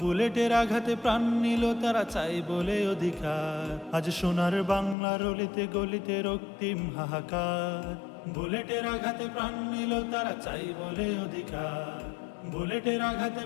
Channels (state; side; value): drops out; right; at 5.0 s